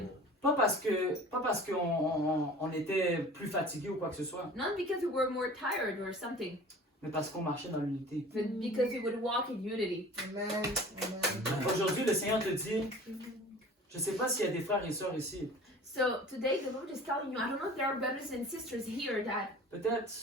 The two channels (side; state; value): both; normal; correlation 0.43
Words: Pas parce qu'on était plus fatigué ou quoi que ce soit, Not because we were more tired or something, mais parce qu'on marchait dans l'unité. but because we would walk in unity. Amen. Amen. Aujourd'hui, le Seigneur te dit, je ne sais pas s'il y a des frères et sœurs ici, So today the Lord is telling you, I don't know if there are brothers and sisters here that